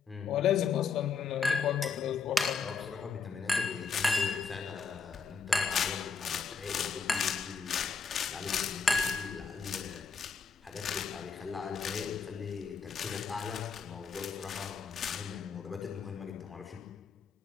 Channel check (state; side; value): quieter; right; 5.3 dB